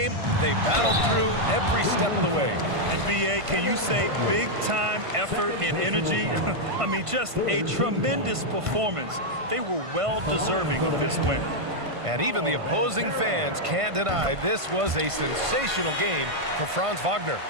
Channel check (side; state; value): left; late; 1.5 ms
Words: they battled through every step of the way. And BA, can you say big-time effort and energy? I mean, just a tremendous performance. They were well-deserving of this win. And even the opposing fans can't deny this was a sensational game for Franz Wagner.